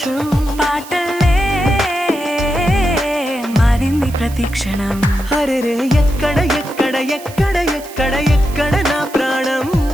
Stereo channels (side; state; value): right; noise; hiss, 18 dB below the sound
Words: పాటల్లే మారింది ప్రతి క్షణం అరెరే ఎక్కడ ఎక్కడ ఎక్కడ ఎక్కడ ఎక్కడ నా ప్రాణం